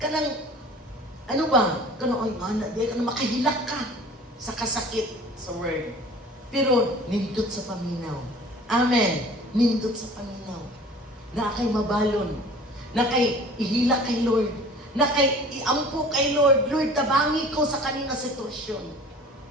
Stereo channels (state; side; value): normal; both; correlation 0.45